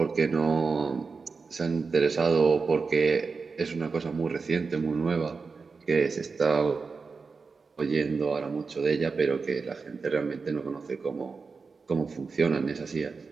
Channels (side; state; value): left; quieter; 4.7 dB